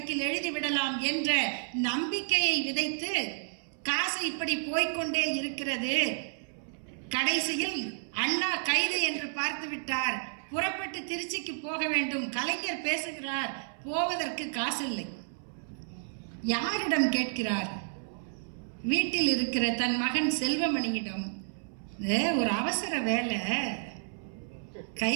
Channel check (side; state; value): left; silent; 57 dB below the other